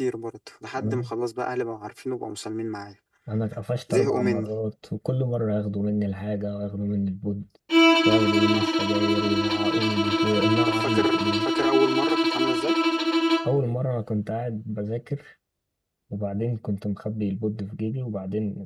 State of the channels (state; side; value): identical; both; correlation 1.00